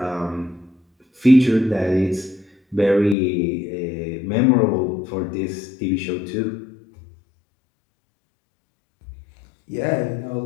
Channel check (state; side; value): drops out; right; at 3.2 s